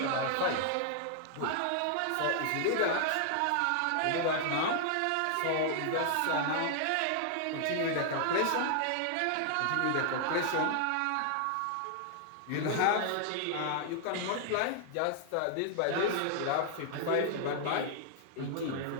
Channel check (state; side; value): different; both; correlation -0.01